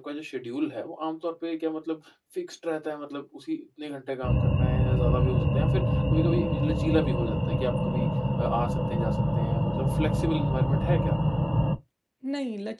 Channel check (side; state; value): both; identical; correlation 1.00